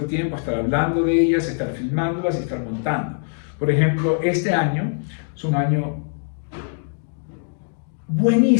tiempo, estar hablando de ellas, estar filmándolas y estar montando. Por ejemplo, este año es un año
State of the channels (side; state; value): right; silent; digital silence